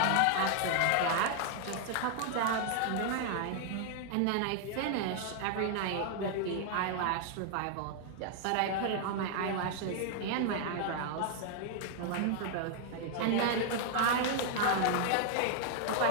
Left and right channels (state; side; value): different; both; correlation 0.00